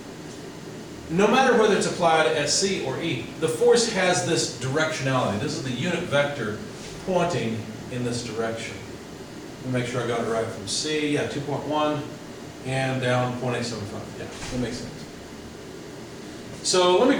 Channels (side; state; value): both; identical; correlation 1.00